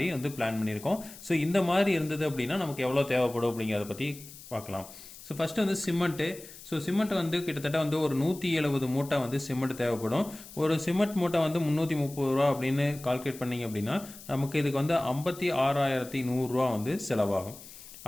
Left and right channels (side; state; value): left; noise; hiss, 17 dB below the sound